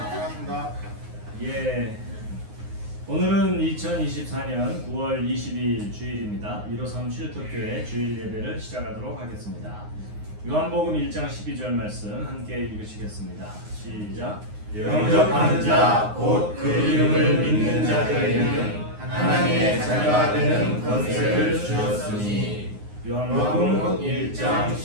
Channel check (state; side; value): late; left; 9.6 ms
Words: 반갑습니다. 예, 오늘은 2024년 9월 22일 주일입니다. 153 쉴터교회 주일 예배를 시작하도록 하겠습니다. 요한복음 1장 12절 말씀 함께 읽으시겠습니다. 시작. 영접하는 자 곧 그 이름을 믿는 자들에게는 하나님의 자녀가 되는 권세를 주셨으니. 요한복음 1장